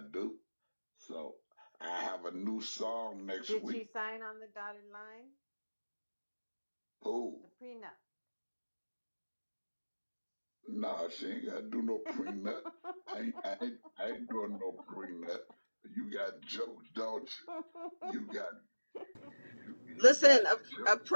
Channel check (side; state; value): both; inverted; correlation -1.00